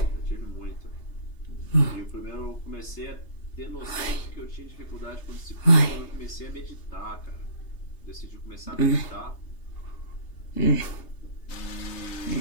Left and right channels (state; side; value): late; right; 3.3 ms